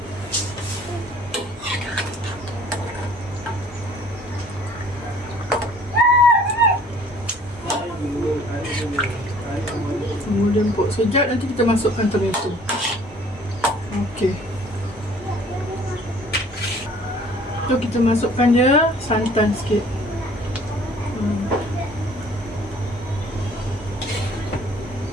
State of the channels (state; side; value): normal; both; correlation 0.54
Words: Kemudian empuk sekejap, nanti kita masukkan tomato. Okey. So kita masukkan dia santan sikit.